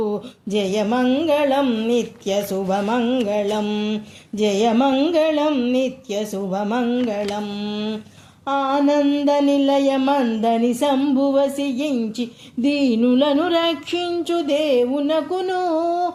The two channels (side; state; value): both; identical; correlation 1.00